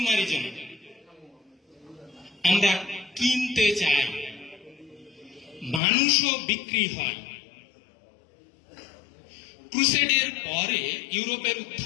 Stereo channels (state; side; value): drops out; right; at 5.8 s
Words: আমরা কিনতে চাই, মানুষও বিক্রি হয়। ক্রুসেডের পরে ইউরোপের